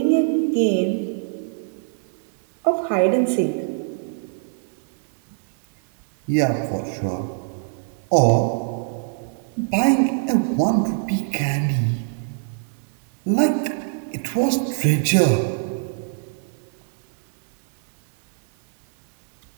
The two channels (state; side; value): silent; left; 62 dB below the other